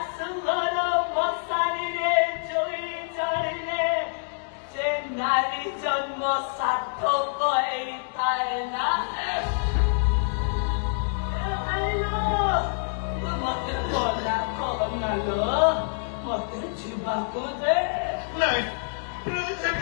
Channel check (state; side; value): silent; right; digital silence